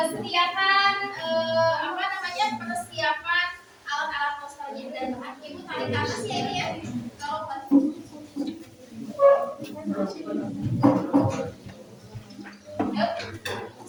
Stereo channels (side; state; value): both; identical; correlation 1.00